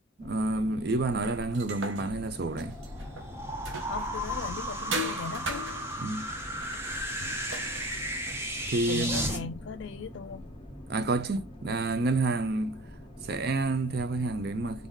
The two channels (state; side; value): normal; both; correlation 0.41